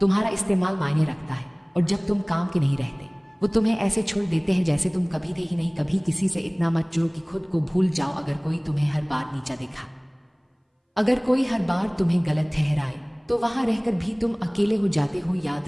इस्तेमाल मायने रखता है, और जब तुम काम के नहीं रहते वो तुम्हें ऐसे छोड़ देते हैं जैसे तुम कभी थे ही नहीं। कभी किसी से इतना मत जुड़ो कि खुद को भूल जाओ। अगर कोई तुम्हें हर बार नीचा देखा, अगर कोई हर बार तुम्हें गलत ठहराए, तो वहां रहकर भी तुम अकेले हो जाते हो।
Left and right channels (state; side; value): identical; both; correlation 1.00